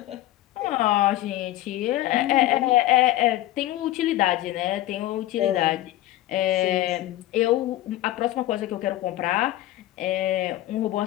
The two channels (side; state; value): right; quieter; 15.0 dB